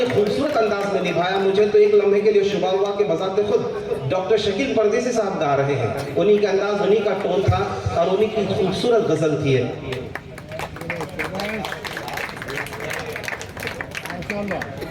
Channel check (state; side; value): identical; both; correlation 1.00